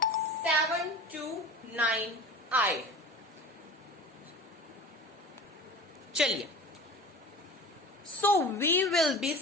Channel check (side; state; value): both; normal; correlation 0.36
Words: 7 to 9 आए. चलिए, so we will be